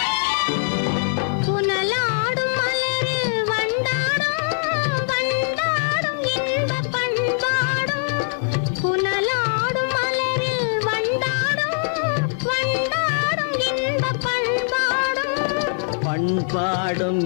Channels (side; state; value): right; silent; 64 dB below the other